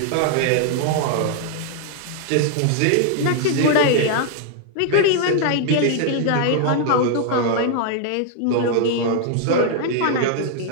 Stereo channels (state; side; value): different; both; correlation 0.00